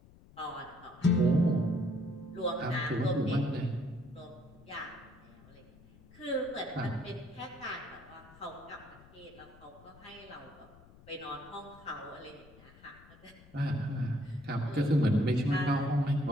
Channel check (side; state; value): left; noise; rumble, 23 dB below the sound